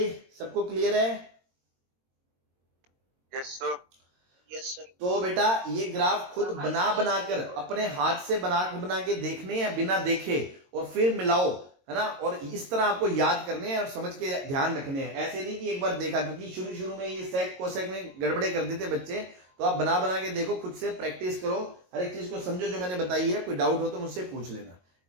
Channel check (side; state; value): left; late; 22 ms